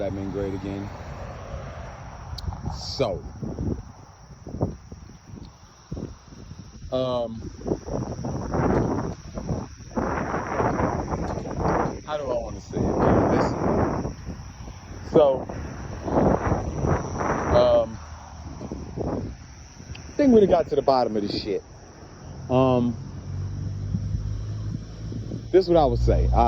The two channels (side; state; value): both; identical; correlation 1.00